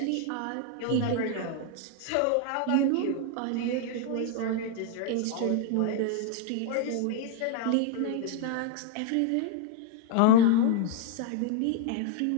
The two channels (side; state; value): both; different; correlation 0.00